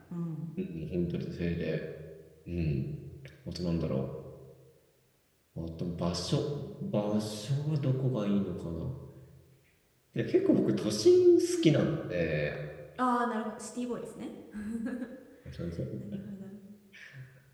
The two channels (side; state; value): both; identical; correlation 1.00